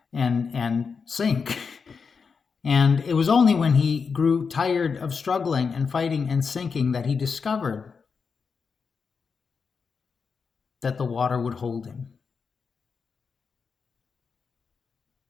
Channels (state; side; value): quieter; right; 5.5 dB